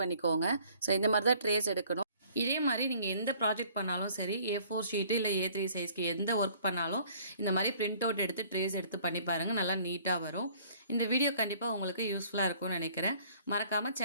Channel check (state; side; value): inverted; both; correlation -0.56